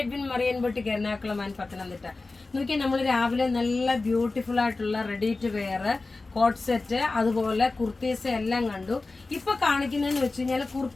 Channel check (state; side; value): quieter; right; 3.5 dB